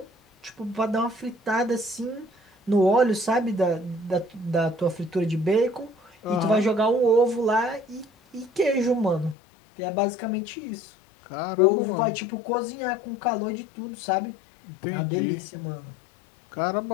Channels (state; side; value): drops out; right; at 9.3 s